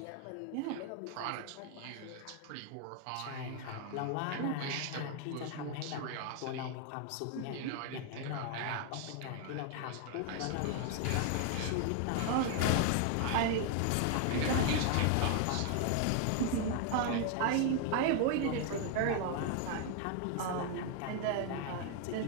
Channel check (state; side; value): different; both; correlation 0.00